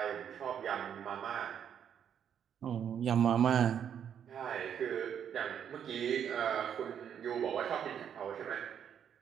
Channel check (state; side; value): quieter; left; 8.6 dB